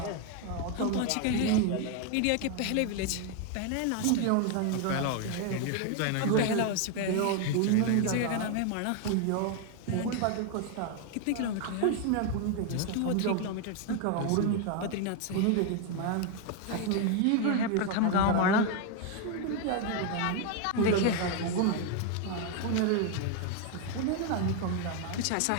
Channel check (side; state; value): both; different; correlation 0.01